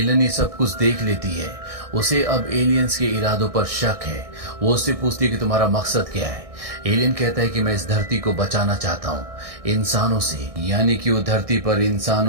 ये सब कुछ देख लेती है। उसे अब एलियंस के इरादों पर शक है। वो उससे पूछती है कि तुम्हारा मकसद क्या है। एलियन कहता है कि मैं इस धरती को बचाना चाहता हूँ इंसानों से, यानी कि वो धरती पर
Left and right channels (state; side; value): late; left; 1.6 ms